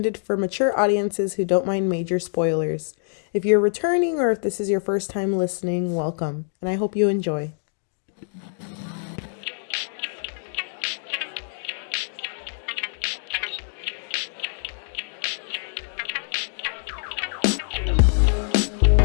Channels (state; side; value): silent; right; digital silence